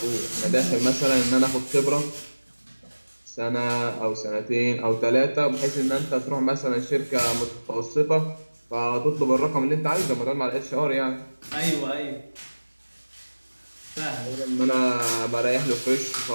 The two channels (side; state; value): both; inverted; correlation -1.00